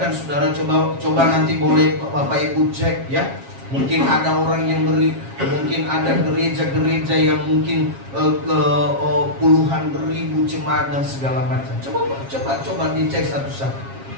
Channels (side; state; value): left; late; 7.4 ms